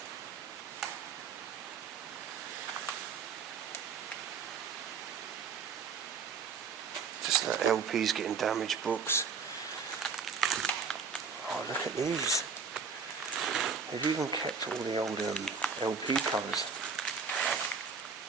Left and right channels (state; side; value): quieter; left; 5.5 dB